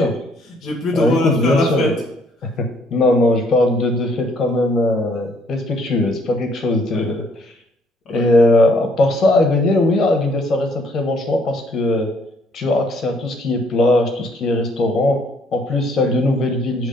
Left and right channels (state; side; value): normal; both; correlation 0.65